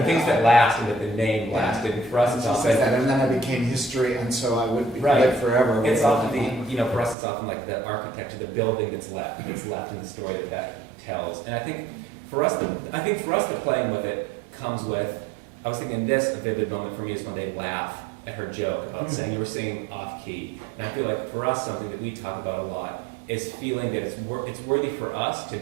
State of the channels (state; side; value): drops out; left; at 7.2 s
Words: things that last and that the name lasted. And for us, it's often that, and then I became history, and so I would live forever. It's often for us, it's often like the architecture, the building that's left in the story that tells. And I think for us, the playing with it comes with. I was thinking a vivid moment for me is when they laugh at her joke about saying you were singing off key. And I feel like for us, something that we talk about a lot is feeling that it's worthy for us to